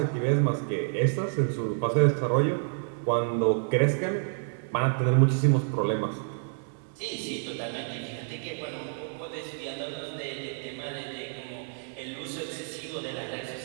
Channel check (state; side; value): silent; left; 59 dB below the other